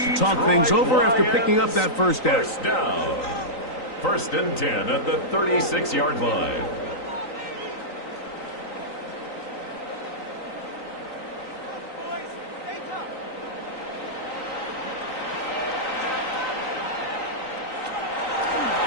to talk things over after picking up that first down. First down. First and 10 at the 36-yard line.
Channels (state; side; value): late; right; 3.9 ms